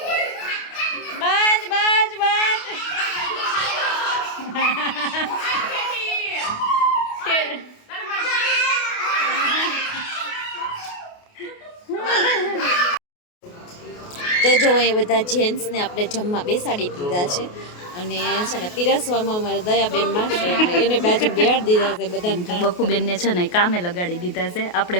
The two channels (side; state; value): right; late; 28 ms